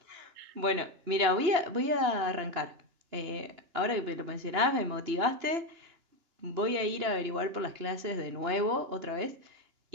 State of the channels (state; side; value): late; left; 2.9 ms